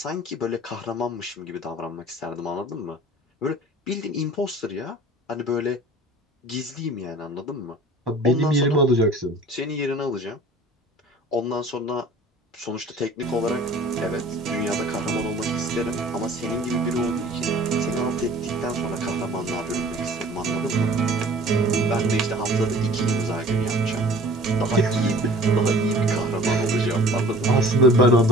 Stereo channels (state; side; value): normal; both; correlation 0.47